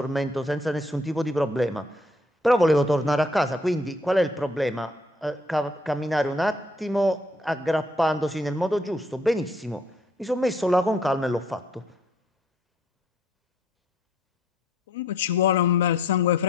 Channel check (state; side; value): normal; both; correlation 0.64